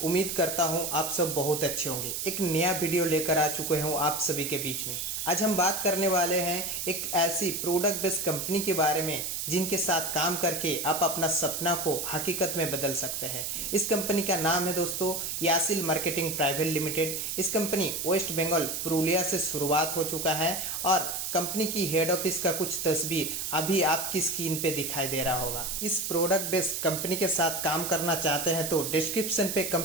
उम्मीद करता हूं आप सब बहुत अच्छे होंगे। एक नया वीडियो लेकर आ चुके हूं आप सभी के बीच में। आज हम बात करने वाले हैं एक ऐसी प्रोडक्ट बेस्ड कंपनी के बारे में जिनके साथ काम करके आप अपना सपना को हकीकत में बदल सकते हैं। इस कंपनी का नाम है दोस्तों यासिल मार्केटिंग प्राइवेट लिमिटेड। इस कंपनी वेस्ट बंगाल पुरुलिया से शुरुआत हो चुका है और कंपनी की हेड ऑफिस का कुछ तस्वीर अभी आपकी स्क्रीन पे दिखाई दे रहा होगा। इस प्रोडक्ट बेस्ड कंपनी के साथ काम करना चाहते हैं तो डिस्क्रिप्शन पे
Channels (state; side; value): noise; right; hiss, 3 dB below the sound